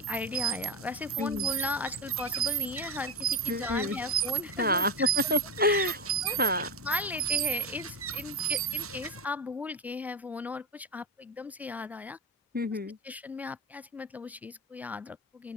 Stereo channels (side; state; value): both; normal; correlation 0.15